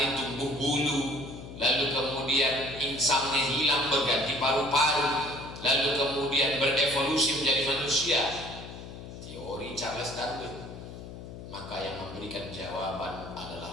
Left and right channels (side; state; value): left; noise; hum, 12 dB below the sound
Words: tumbuh bulu, lalu kemudian insangnya hilang berganti paru-paru, lalu kemudian berevolusi menjadi manusia. Teori Charles Darwin. Maka yang memberikan jawaban